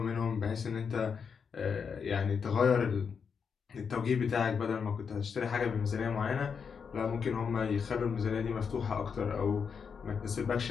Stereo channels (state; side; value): quieter; right; 6.3 dB